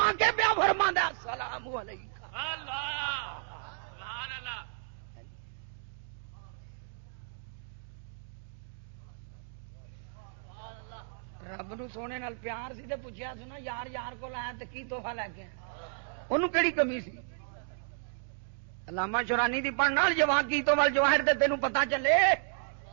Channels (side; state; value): left; silent; digital silence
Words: کے پیا فرماندا السلام علیکم اللہ سبحان اللہ رب نو سونے نال پیار سی تے پوچھیا سی نا یار یار کول آیا تے کی تحفہ لے کے انہوں کیڑی کمی سی علامہ شورانی دی پڑھنا جوان کی تو ول جواہر تے تینوں پتہ چلے